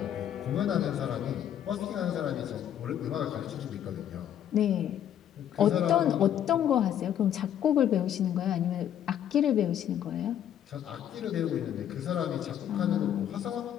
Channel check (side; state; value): right; quieter; 10.2 dB